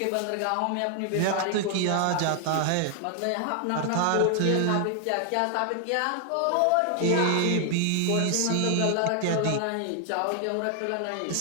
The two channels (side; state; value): both; different; correlation 0.00